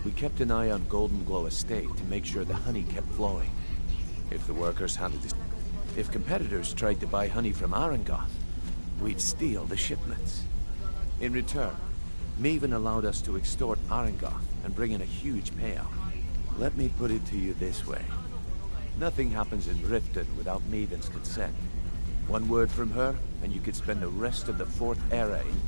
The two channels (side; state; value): both; inverted; correlation -1.00